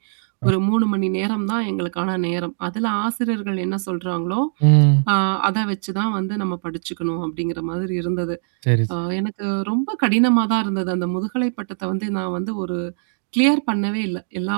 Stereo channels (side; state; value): left; silent; digital silence